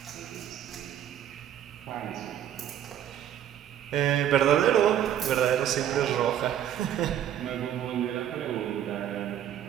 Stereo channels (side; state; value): left; quieter; 10.5 dB